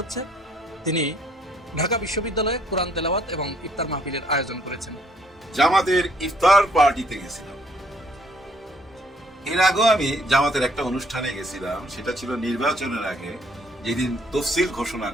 তিনি ঢাকা বিশ্ববিদ্যালয়ে কোরআন তেলাওয়াত এবং ইফতার মাহফিলের আয়োজন করেছেন। জামাতের ইফতার পার্টিতে গেছিলাম। এর আগেও আমি জামাতের একটা অনুষ্ঠানে গেছিলাম, সেটা ছিল নির্বাচনের আগে, যেদিন তফসিল ঘোষণা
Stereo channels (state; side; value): normal; both; correlation 0.66